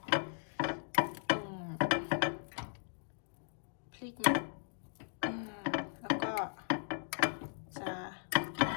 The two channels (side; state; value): right; silent; digital silence